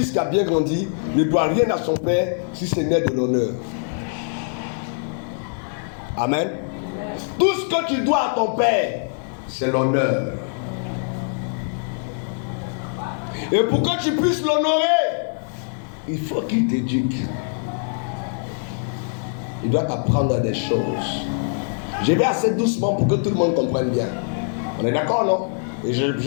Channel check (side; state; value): right; silent; digital silence